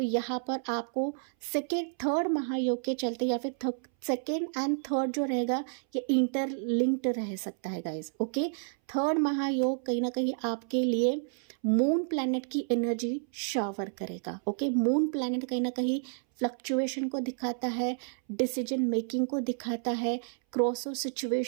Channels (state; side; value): silent; left; 58 dB below the other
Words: यहाँ पर आपको थर्ड महायोग के चलते या फिर सेकेंड एंड थर्ड जो रहेगा ये इंटरलिंक्ड रह सकता है गाइज। ओके, थर्ड महायोग कहीं ना कहीं आपके लिए मून प्लैनेट की एनर्जी शावर करेगा। ओके, मून प्लैनेट कहीं ना कहीं फ्लक्चुएशन को दिखाता है, डिसीजन मेकिंग को दिखाता है, क्रॉसओवर